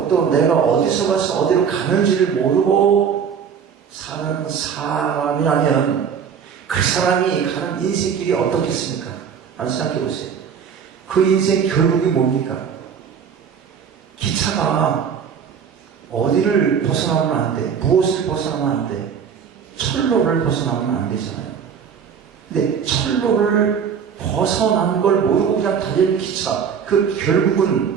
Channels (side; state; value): left; quieter; 7.2 dB